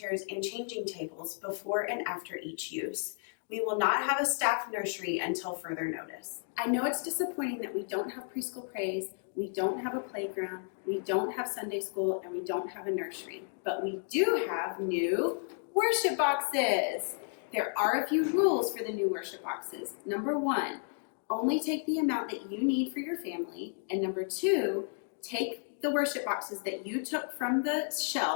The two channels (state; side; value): silent; right; 56 dB below the other